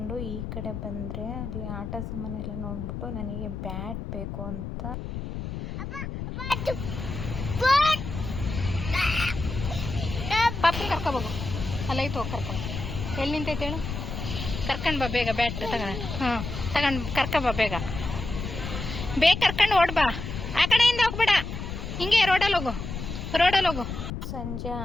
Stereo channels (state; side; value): noise; left; rumble, 6 dB below the sound